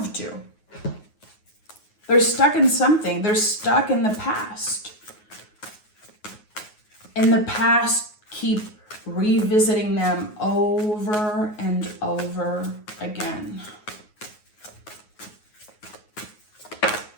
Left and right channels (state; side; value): late; right; 9.4 ms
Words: to. They're stuck in something. They're stuck in the past. And the past keep revisiting them over and over again.